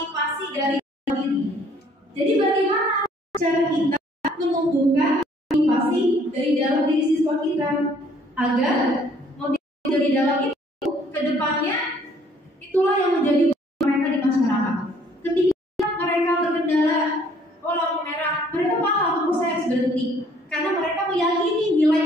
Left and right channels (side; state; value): both; normal; correlation 0.60